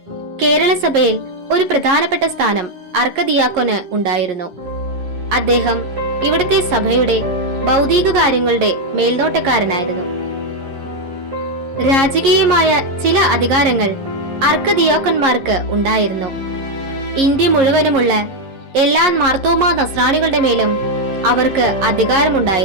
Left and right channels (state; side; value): late; left; 11 ms